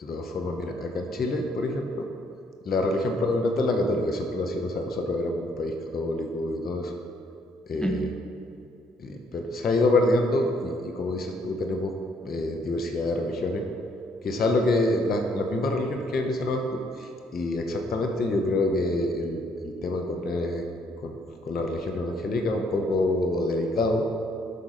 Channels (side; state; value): both; normal; correlation 0.68